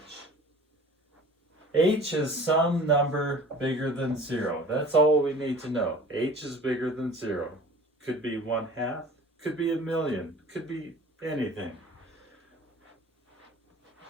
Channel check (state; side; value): normal; both; correlation 0.44